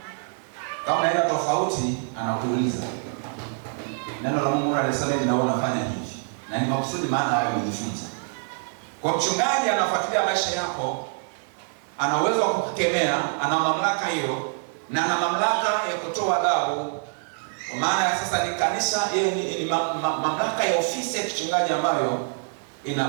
Kama naenda tofauti, anakuuliza. Neno la Mungu linasema hivi na wewe unafanya hivi. Na ni makusudi, maana wewe umejifunza. Kwa mchungaji anafuatilia maisha yako, ana uwezo wa kukemea, ana mamlaka hiyo, na ana mamlaka ya kutoa adhabu. Kwa maana sasa ni kanisa, ni mamlaka ya ofisi ya kichungaji ambayo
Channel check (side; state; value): left; silent; 62 dB below the other